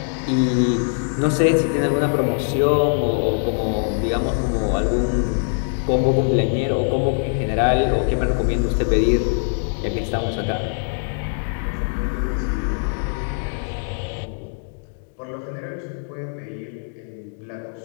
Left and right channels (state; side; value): silent; right; digital silence